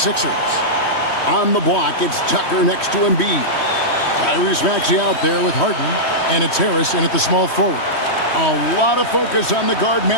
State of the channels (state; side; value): late; right; 3.1 ms